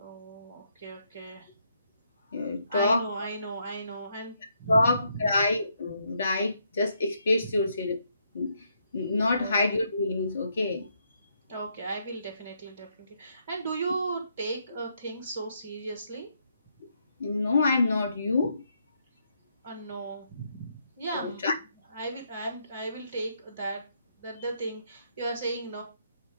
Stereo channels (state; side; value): inverted; both; correlation -0.76